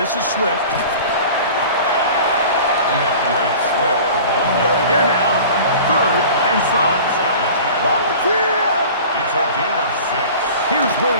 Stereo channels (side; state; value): both; inverted; correlation -0.40